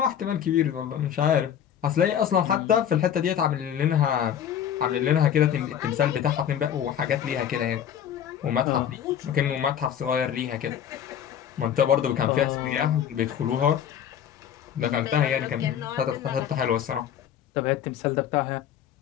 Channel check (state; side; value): quieter; right; 9.3 dB